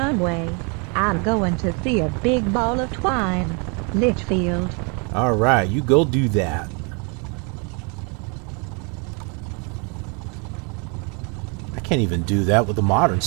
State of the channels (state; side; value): quieter; left; 34.2 dB